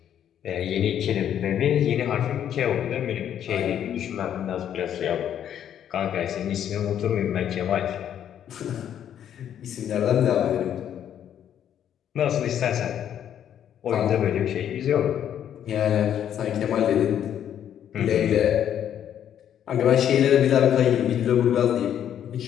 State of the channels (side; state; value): right; quieter; 9.8 dB